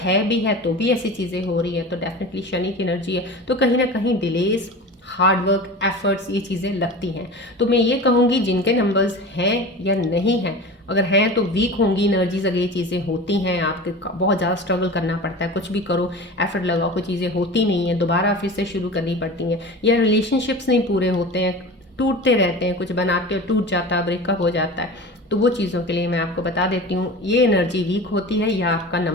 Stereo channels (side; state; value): both; normal; correlation 0.33